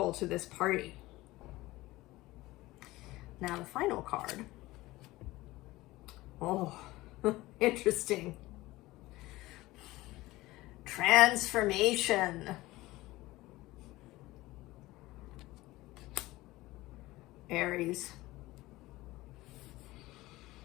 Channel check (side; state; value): right; quieter; 18.8 dB